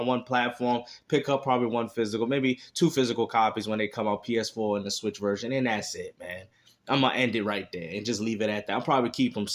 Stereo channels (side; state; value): both; identical; correlation 1.00